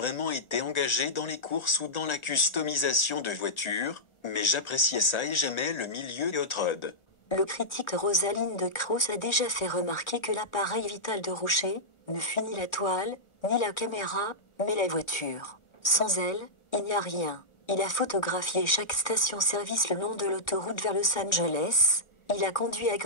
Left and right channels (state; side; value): late; right; 1.4 ms